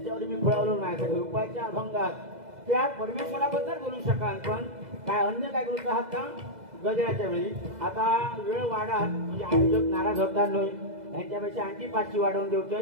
मी फळवलो नाही रुपयाच्या अभंगात त्या परमेश्वराबद्दल बोलू शकाल, पण काय अन्य काय बोलत आहात का गजराच्या वेळी? आता वेळ वाढात म्हणजे आयोजक नाराज होतात नाही, यांच्यापेक्षा आणखी 5ची वाढवून देऊची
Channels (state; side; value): late; left; 2.0 ms